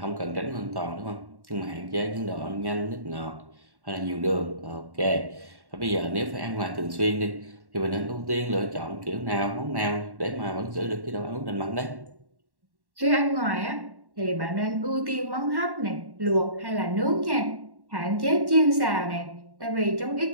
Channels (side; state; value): left; late; 1.1 ms